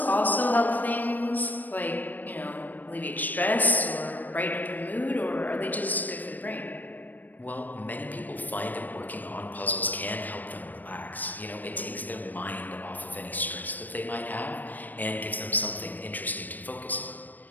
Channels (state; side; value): late; right; 0.086 ms